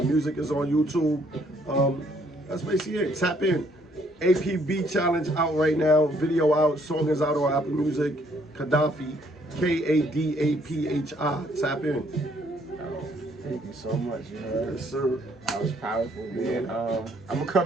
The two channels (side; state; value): both; normal; correlation 0.66